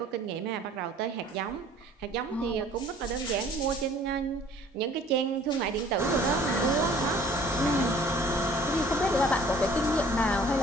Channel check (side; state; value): both; normal; correlation 0.53